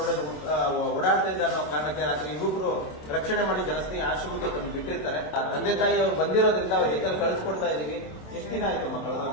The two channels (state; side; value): late; right; 26 ms